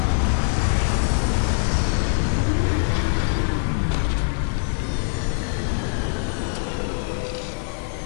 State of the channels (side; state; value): right; silent; digital silence